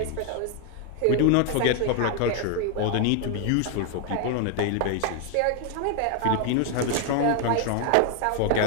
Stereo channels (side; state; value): both; different; correlation 0.01